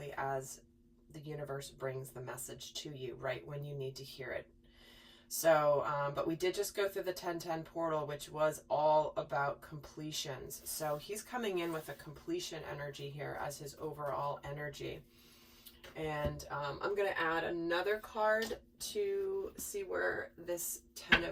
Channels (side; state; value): both; identical; correlation 1.00